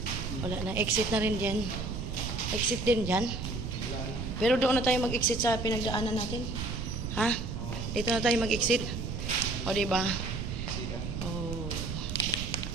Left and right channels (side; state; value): right; noise; rumble, 4 dB below the sound